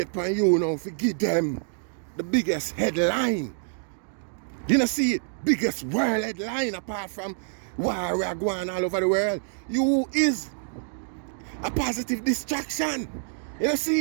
for you now to give them the biggest headline. You know, see it? Biggest world headline apart from war we are going all over the world. You is a positive distraction. You know,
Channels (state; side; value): silent; left; digital silence